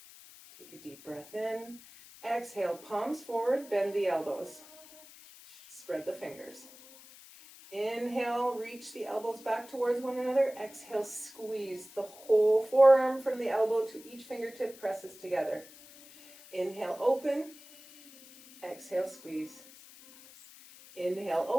Take a deep breath in. Exhale, palms forward, bend the elbows. Spread the fingers. Inhale, reach the elbows back towards one another. Exhale, squeeze the whole forearm from the elbow to each fingertip presses together. Inhale, open. Exhale, squeeze. Inhale,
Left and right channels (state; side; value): noise; left; hiss, 20 dB below the sound